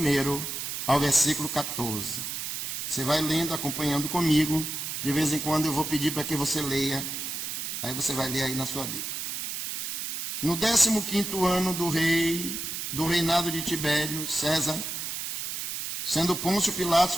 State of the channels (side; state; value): right; noise; hiss, 4 dB below the sound